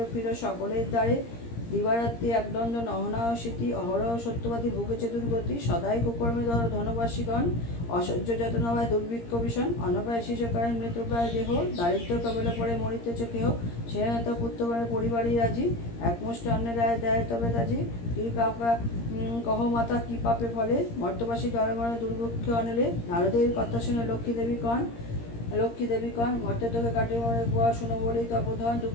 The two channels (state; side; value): late; right; 17 ms